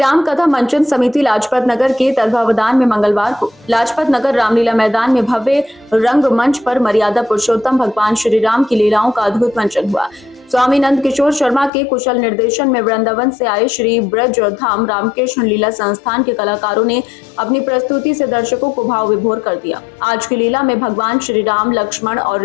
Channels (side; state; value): right; drops out; at 11.7 s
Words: कथा मंचन समिति लाजपत नगर के तत्वावधान में मंगलवार को लाजपत नगर रामलीला मैदान में भव्य रंग मंच पर मर्यादा पुरुषोत्तम भगवान श्री राम की लीलाओं का अद्भुत मंचन हुआ। स्वामी नंद किशोर शर्मा के कुशल निर्देशन में वृंदावन से आए श्री ब्रज धाम रामकृष्ण लीला संस्थान के कलाकारों ने अपनी प्रस्तुति से दर्शकों को भाव विभोर कर दिया। आज की लीला में भगवान श्री राम लक्ष्मण